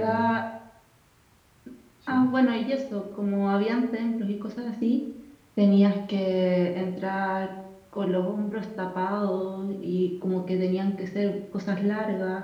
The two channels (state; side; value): identical; both; correlation 1.00